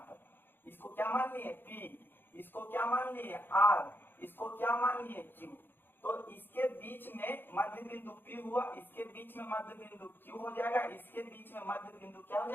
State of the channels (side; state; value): right; late; 0.099 ms